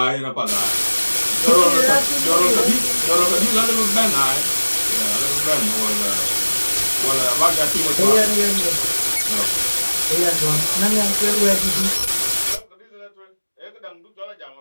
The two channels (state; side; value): inverted; both; correlation -1.00